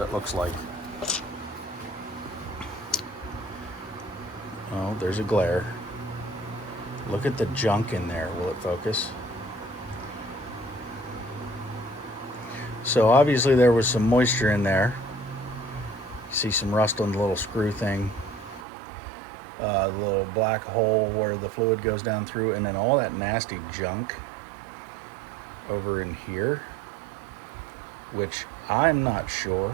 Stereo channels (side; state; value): left; drops out; at 18.7 s